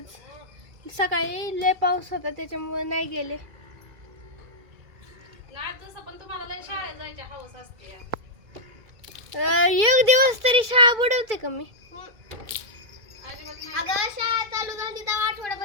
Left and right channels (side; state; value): left; late; 2.3 ms